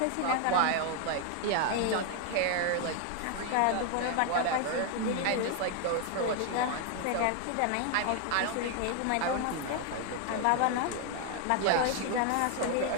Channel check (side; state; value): both; different; correlation 0.00